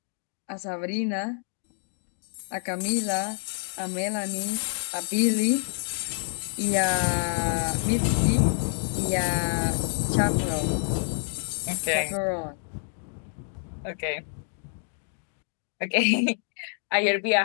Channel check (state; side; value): silent; right; 60 dB below the other